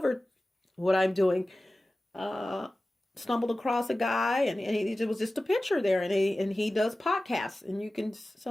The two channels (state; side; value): normal; both; correlation 0.96